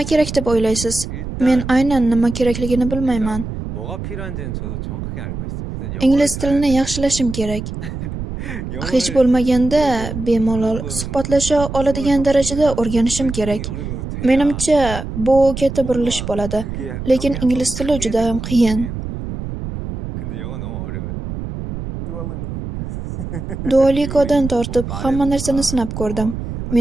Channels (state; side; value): noise; right; rumble, 7 dB below the sound